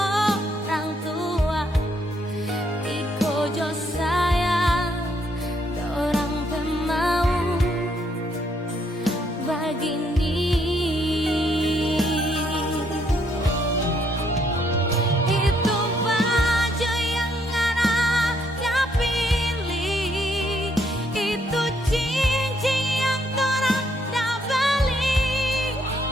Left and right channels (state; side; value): normal; both; correlation 0.71